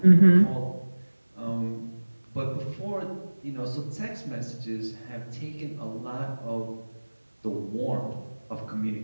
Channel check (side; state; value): both; inverted; correlation -1.00